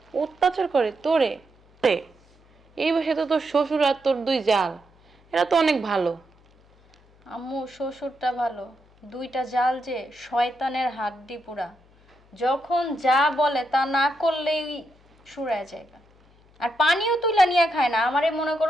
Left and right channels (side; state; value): left; noise; hum, 30 dB below the sound